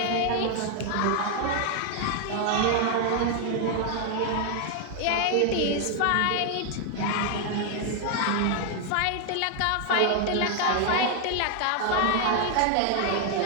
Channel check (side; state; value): both; different; correlation 0.00